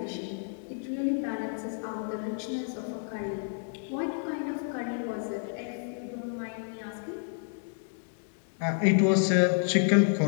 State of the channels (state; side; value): silent; right; digital silence